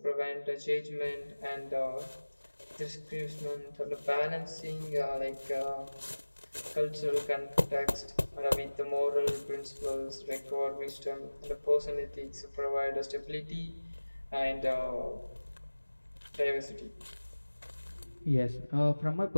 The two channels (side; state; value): both; inverted; correlation -1.00